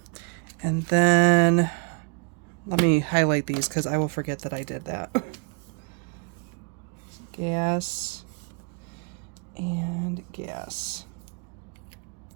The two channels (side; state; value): left; quieter; 37.7 dB